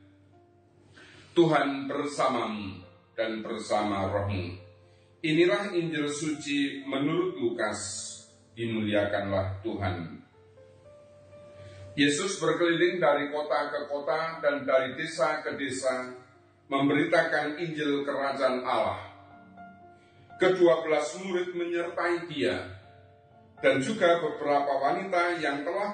Tuhan bersamamu dan bersama rohmu. Inilah Injil suci menurut Lukas. Dimuliakanlah Tuhan. Yesus berkeliling dari kota ke kota dan dari desa ke desa, memberitakan Injil Kerajaan Allah. Ke-12 murid menyertai dia, dan juga beberapa wanita yang telah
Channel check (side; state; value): both; identical; correlation 1.00